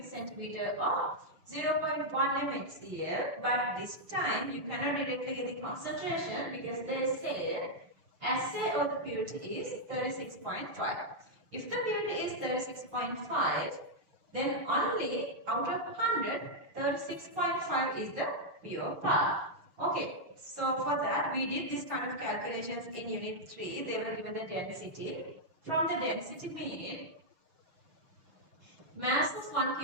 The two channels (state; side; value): late; left; 6.3 ms